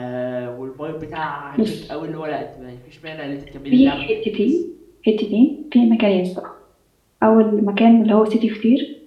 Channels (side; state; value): both; identical; correlation 1.00